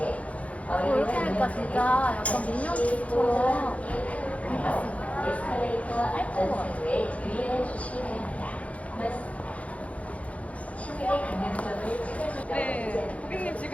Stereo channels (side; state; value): right; late; 0.065 ms